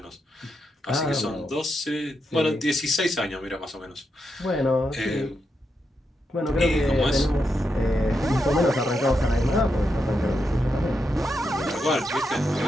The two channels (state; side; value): normal; both; correlation 0.84